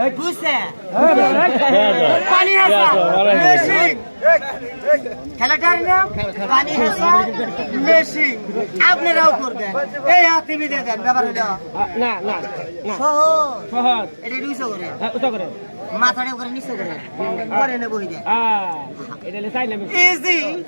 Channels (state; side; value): inverted; both; correlation -1.00